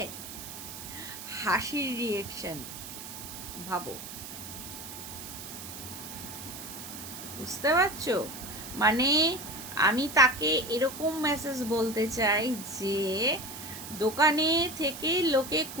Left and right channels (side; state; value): right; noise; hiss, 11 dB below the sound